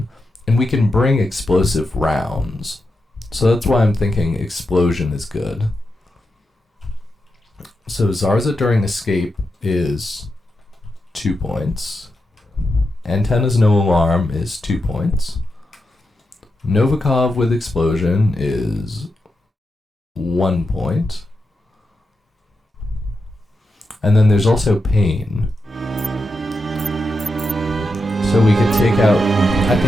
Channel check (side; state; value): both; normal; correlation 0.87